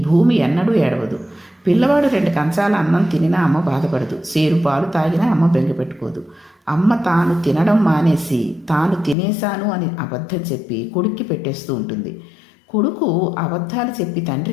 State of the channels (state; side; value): drops out; right; at 9.2 s